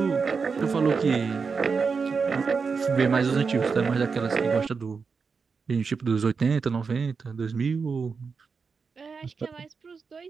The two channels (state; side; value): quieter; left; 5.2 dB